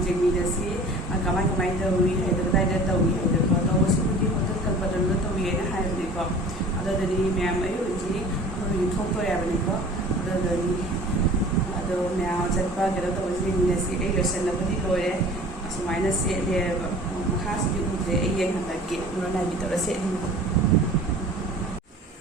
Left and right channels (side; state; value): both; normal; correlation 0.44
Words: ꯌꯦꯡꯃꯤꯟꯅꯁꯤ ꯀꯃꯥꯏ ꯇꯧꯏ ꯍꯥꯏꯗꯣ ꯀꯗꯥꯏꯗ ꯇꯧꯏ ꯍꯥꯏꯗꯣꯀꯣ ꯇꯧꯕꯁꯤꯕꯨꯗꯤ ꯍꯣꯇꯦꯜ ꯀꯜꯄꯇꯔꯨꯗ ꯇꯧꯏꯅ ꯍꯥꯏꯕꯅꯤꯀꯣ ꯑꯗꯨꯗꯗꯤ ꯃꯌꯥꯝ ꯑꯩ ꯍꯧꯖꯤꯛ ꯊꯣꯛꯇꯣꯔꯦ ꯍꯥꯏꯕꯅꯤꯀꯣ ꯑꯗꯨꯗꯗꯤ ꯑꯗꯣ ꯃꯌꯥꯝ ꯆꯠꯄ ꯀꯩꯅꯣ ꯇꯧꯕꯁꯤ ꯌꯦꯡꯃꯤꯟꯅꯁꯤ ꯑꯩ ꯂꯣꯏꯁꯤꯟꯅꯕꯗꯤ ꯂꯣꯏꯔꯦ ꯑꯁꯨꯃꯥꯏꯅ ꯁꯦꯠꯂꯦꯕ ꯃꯈꯥꯁꯤꯗꯤ ꯎꯗ꯭ꯔꯦ ꯑꯩ ꯌꯦꯡꯍꯜꯂꯛꯀꯦ ꯃꯔꯣꯟ ꯅꯥꯏꯕꯤ ꯇꯧꯔ ꯁꯦꯠꯂꯤꯕ